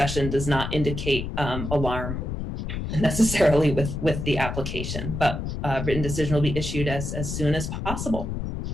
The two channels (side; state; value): left; noise; rumble, 5 dB below the sound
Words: does not indicate alarm necessarily with the application, but written decision will be issued as soon as possible.